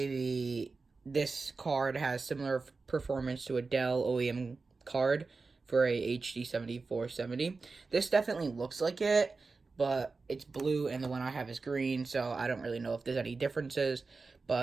this card has similar performance to a Dell OEM card for a HD 7470. This definitely looks like it, but it's blue and the one I have is green, so I don't really know if there's any differences.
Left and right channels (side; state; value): left; quieter; 4.1 dB